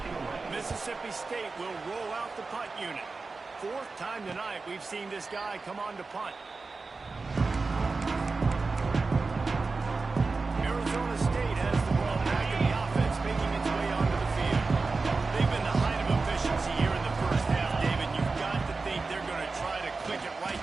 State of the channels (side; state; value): left; quieter; 4.0 dB